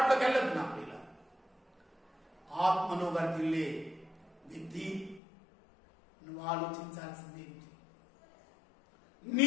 వెళ్ళదు. నా ప్రియుల ఆత్మను వర్ధిల్లే విధి నువ్వు ఆలోచించాల్సింది ఏంటి?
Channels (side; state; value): right; drops out; at 5.2 s